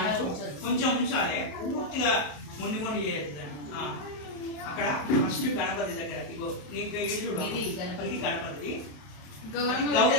ఉంచాలి, పూర్తిగా ముందు ముందు చేయొద్దు. అక్కడ ఫస్ట్ గణపతి దగ్గర ఇగో ఇది గణపతి,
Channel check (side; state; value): right; late; 27 ms